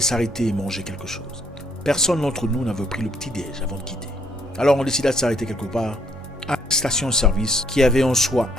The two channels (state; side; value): normal; both; correlation 0.67